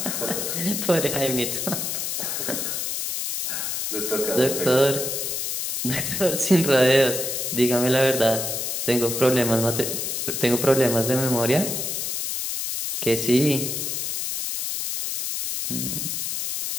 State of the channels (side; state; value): left; noise; hiss, 2 dB below the sound